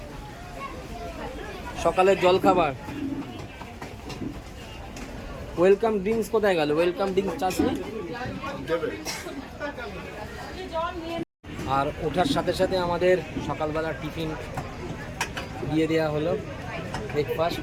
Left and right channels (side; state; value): both; identical; correlation 1.00